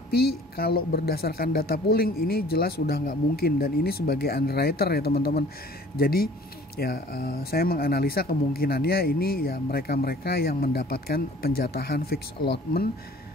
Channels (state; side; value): normal; both; correlation 0.51